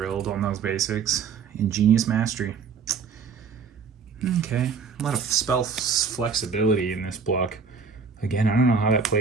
on those basics. Ingenious Mastery. Okay, a lot of spell flexibility in this block. Again, I don't know how that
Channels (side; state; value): left; quieter; 5.7 dB